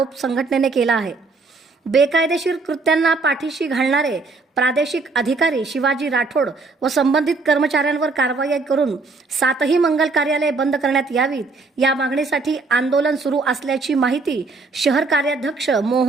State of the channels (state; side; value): quieter; left; 3.9 dB